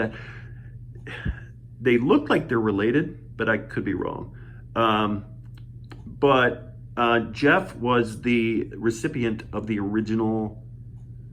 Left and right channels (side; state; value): both; identical; correlation 1.00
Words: They look like they're related, but I could be wrong. But Jeff was the recipient of the original